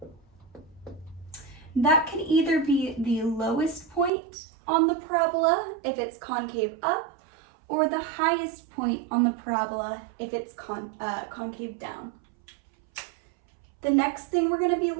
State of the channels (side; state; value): left; drops out; at 4.1 s